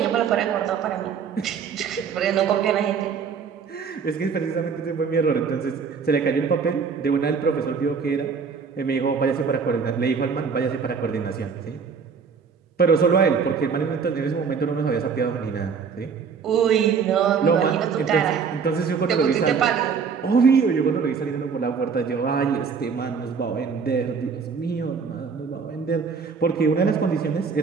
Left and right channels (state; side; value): quieter; left; 5.9 dB